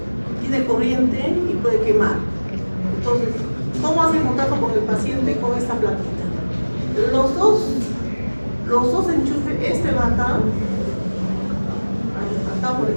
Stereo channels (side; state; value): both; inverted; correlation -1.00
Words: Tiene corriente y puede quemar. Entonces, ¿cómo hacen contacto con el paciente con esta plaquita? Los dos enchufes, este va acá, por